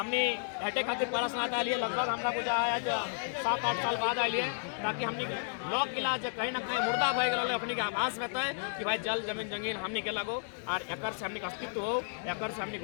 हटे खातिर प्रश्न आ लिए, लगभग हमरा पूजा आज 7-8 साल बाद आइए, ताकि हमने लोक इलाज कहीं ना कहीं मुर्दा भय गए अपने के आभास में है कि भाई जल जमीन जंगीन हमने के लगो और एक से हमने अस्तित्व हो, एक से हमने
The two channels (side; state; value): right; silent; digital silence